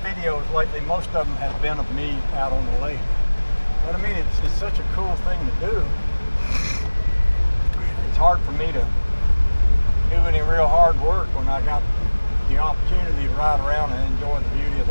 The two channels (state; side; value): inverted; both; correlation -1.00